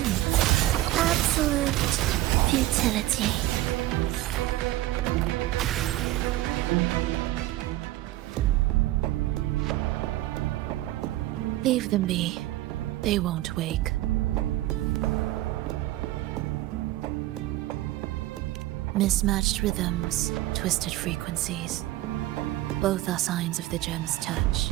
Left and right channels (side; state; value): left; quieter; 16.1 dB